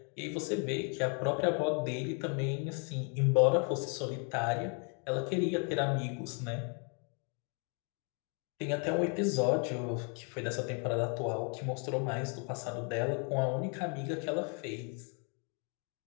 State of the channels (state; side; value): quieter; right; 39.0 dB